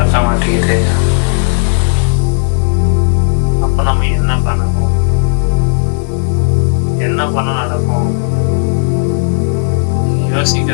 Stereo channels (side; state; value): right; silent; digital silence